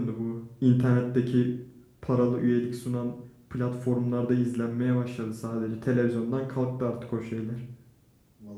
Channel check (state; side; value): identical; both; correlation 1.00